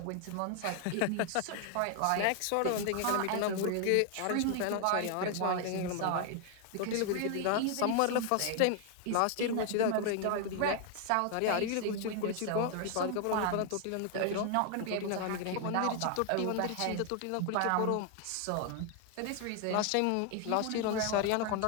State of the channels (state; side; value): different; both; correlation 0.00